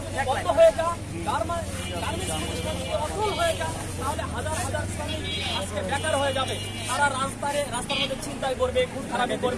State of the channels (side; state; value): both; identical; correlation 1.00